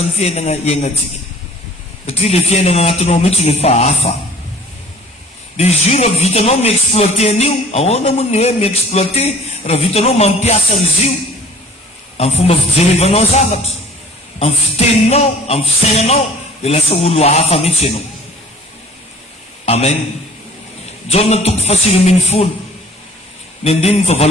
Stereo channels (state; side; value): normal; both; correlation 0.49